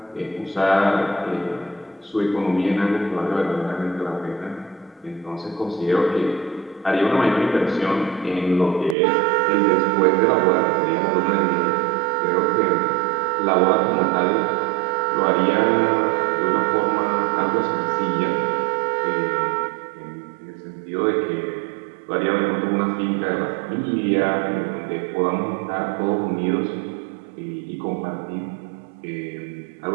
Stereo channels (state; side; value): drops out; left; at 9.0 s